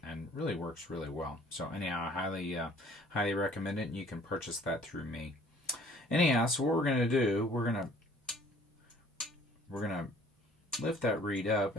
really works really well. So anyhow, I highly recommend it, and you can purchase that through me. Anyhow, so what we're going to do, we're going to lift that reed up,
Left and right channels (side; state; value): both; normal; correlation 0.55